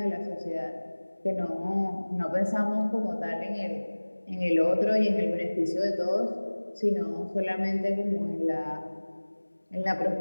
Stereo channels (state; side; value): inverted; both; correlation -1.00